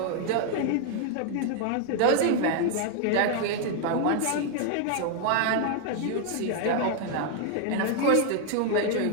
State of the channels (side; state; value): both; different; correlation 0.00